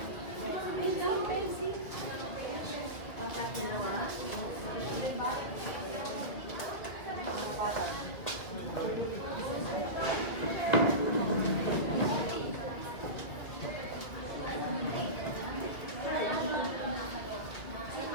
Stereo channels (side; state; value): right; late; 2.3 ms